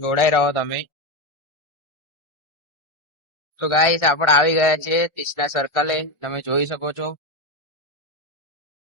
રહો તમે. તો ગાઈસ આપણે આવી ગયા છે 30 ના સર્કલે. તમે જોઈ શકો છો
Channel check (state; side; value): late; right; 1.4 ms